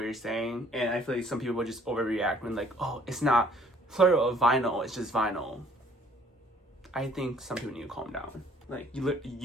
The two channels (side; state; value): both; normal; correlation 0.59